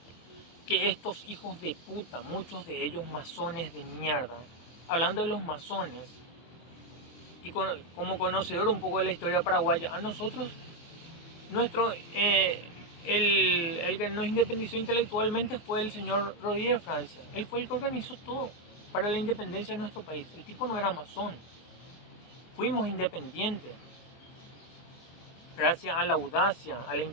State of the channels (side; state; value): right; late; 24 ms